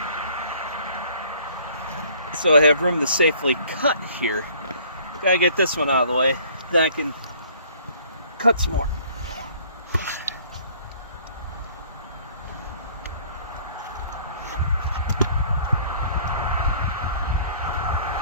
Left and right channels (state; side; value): inverted; both; correlation -0.55